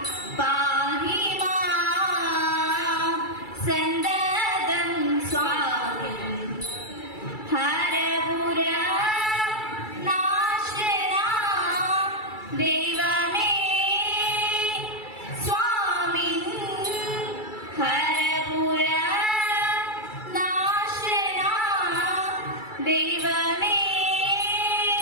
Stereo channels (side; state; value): right; late; 2.3 ms